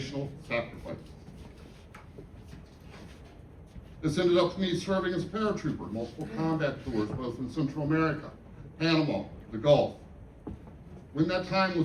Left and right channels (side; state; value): both; identical; correlation 1.00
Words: sacrifice. This ended up me serving as a paratrooper, multiple combat tours, both in Central America, Panama, the Gulf. When that time